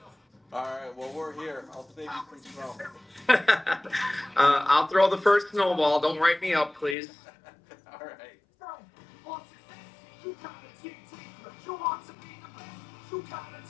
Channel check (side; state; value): right; drops out; at 7.0 s